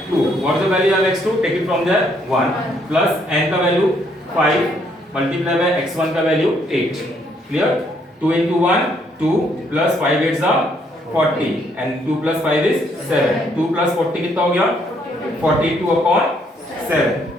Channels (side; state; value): both; normal; correlation 0.70